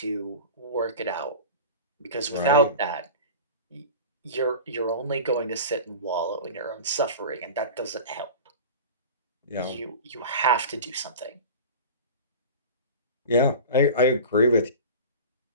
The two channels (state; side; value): inverted; both; correlation -0.33